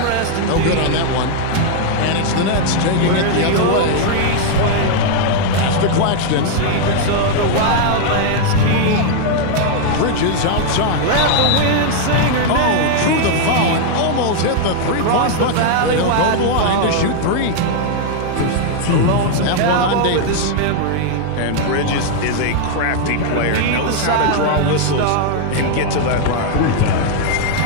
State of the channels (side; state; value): both; different; correlation 0.00